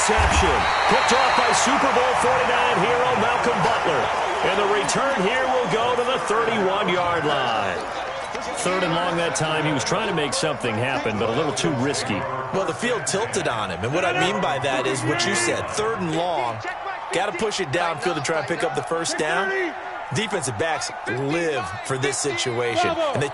Picked off by Super Bowl 49 hero Malcolm Butler. And the return here will go to the 31-yard line. Third and long that time. He was trying to make something happen, but a little too risky. Well, the field tilted on him. And what I mean by that is what you said. Third and long. Got to push it downfield to try and pick up the first down. Defensive backs live for this situation. And they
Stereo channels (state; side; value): identical; both; correlation 1.00